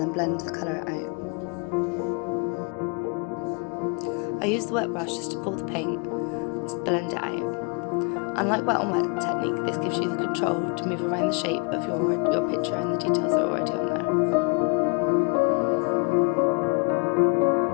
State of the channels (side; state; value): right; quieter; 34.1 dB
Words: blend the colour out. I use the wet brush just to pull the paint and blend it out. Unlike wet on wet technique, this gives you the control to move around the shape of your picture and the details that are already on there.